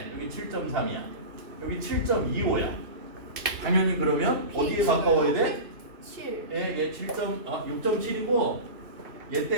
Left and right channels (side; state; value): left; late; 2.6 ms